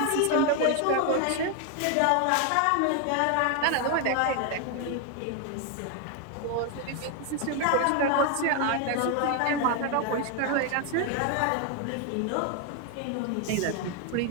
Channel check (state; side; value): different; both; correlation 0.01